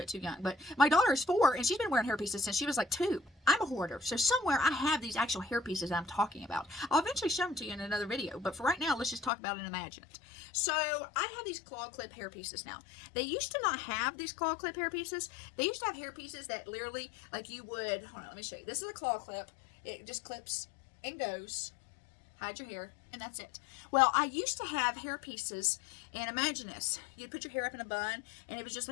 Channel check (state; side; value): drops out; right; at 9.3 s